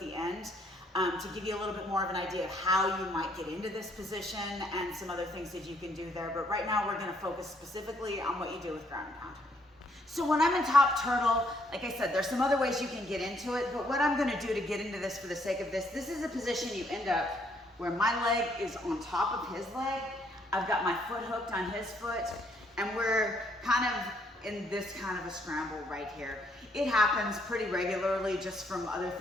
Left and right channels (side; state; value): both; normal; correlation 0.69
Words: end to give you a little bit more of an idea of how you might get into this position and some other things that you can do there. But right now we're gonna focus specifically on what you do with ground and pound. So when I'm in top turtle, like I said, there's some other ways you can get into it, but what I'm gonna do to get into this for the sake of this is a position you end up where my leg is on top of his leg. I've got my foot hooked on his foot, and we're kind of in this kind of a scramble right here. It happens pretty regularly just from other